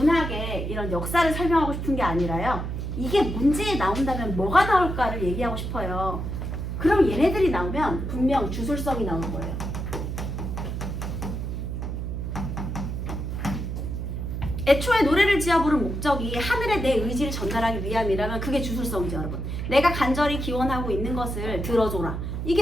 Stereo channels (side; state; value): right; noise; hum, 4 dB below the sound